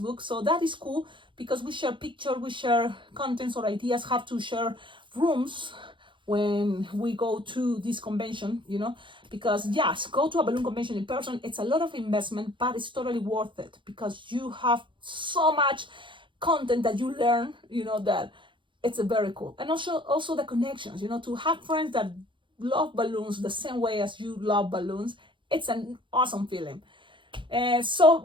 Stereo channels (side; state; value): left; late; 0.24 ms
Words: so that is cool, because we share pictures, we share contents or ideas, have to share rooms when we go to this convention, because yes, go to a balloon convention in person, it's a lot of investment, but it's totally worth it, because you have so much content that you learn, that it's a very cool. And also the connections, to have friends that love balloons the same way as you love balloons. It's an awesome feeling. So,